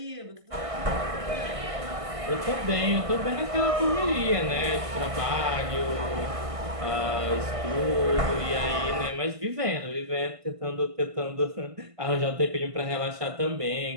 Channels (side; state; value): left; late; 1.5 ms